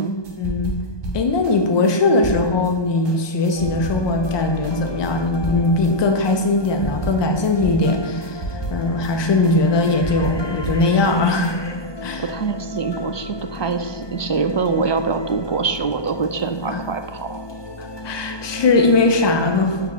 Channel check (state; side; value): late; right; 1.2 ms